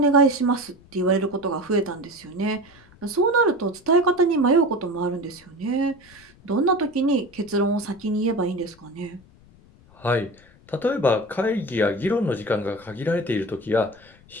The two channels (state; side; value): noise; left; rumble, 26 dB below the sound